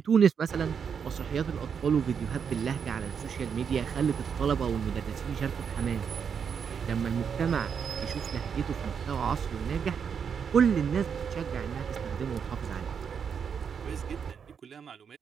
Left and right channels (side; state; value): left; quieter; 6.9 dB